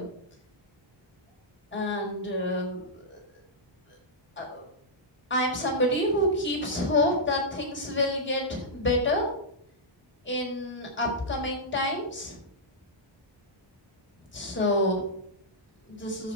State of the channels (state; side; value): normal; both; correlation -0.10